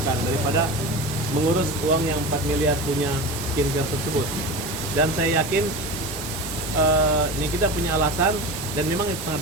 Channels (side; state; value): both; normal; correlation 0.29